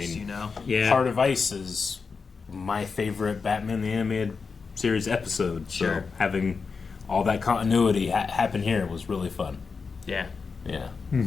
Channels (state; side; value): quieter; right; 5.0 dB